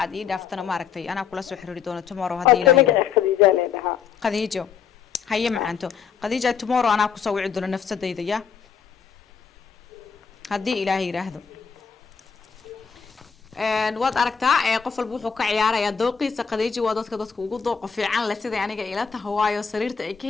aad ii dhaaftana maaragtay ana kula soo xiriiri doono tomorrow hadii ilaahay qadiijo haye macanto qadiijo tomorrow ana ku soo wici doono nafsadayda ya hadii ilaahay yiraahdo waad aragtaa qof walba wuxuu ka ciyaarayaa dooqiisa qadiijo waa dadka ugu dooq fiican la sida aniga ila tahay waayo sariirta ay ka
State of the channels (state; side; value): quieter; right; 6.6 dB